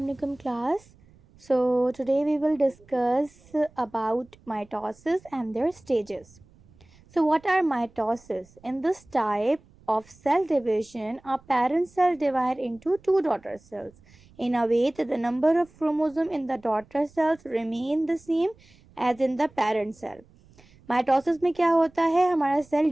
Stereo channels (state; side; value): noise; right; rumble, 28 dB below the sound